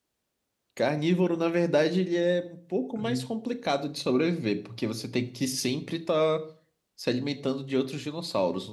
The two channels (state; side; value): identical; both; correlation 1.00